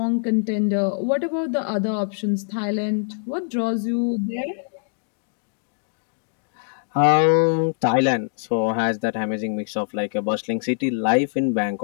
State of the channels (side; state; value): right; silent; digital silence